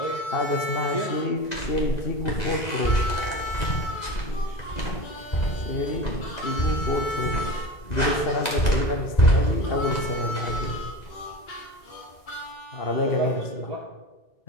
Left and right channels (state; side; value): late; right; 2.0 ms